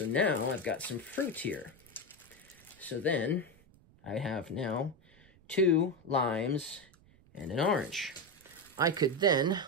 now I've got some fruit here. So then I have now 2 limes and an orange. I could then,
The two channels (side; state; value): right; noise; rumble, 28 dB below the sound